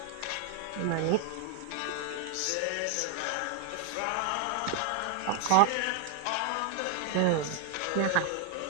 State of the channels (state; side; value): different; both; correlation 0.00